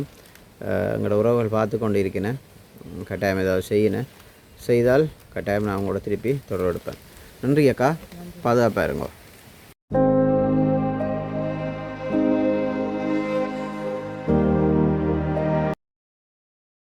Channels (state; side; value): identical; both; correlation 1.00